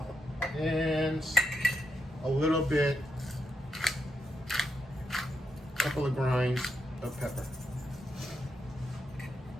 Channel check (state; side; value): normal; both; correlation 0.83